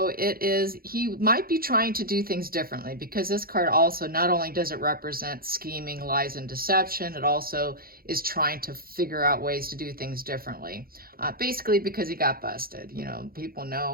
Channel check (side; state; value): left; late; 0.43 ms